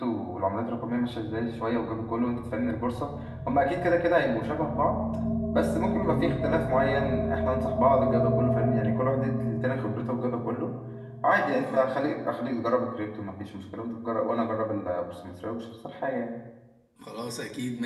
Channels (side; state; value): both; identical; correlation 1.00